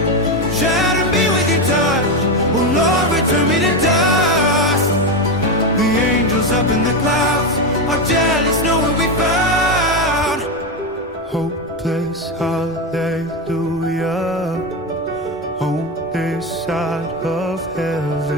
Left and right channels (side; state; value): both; normal; correlation 0.12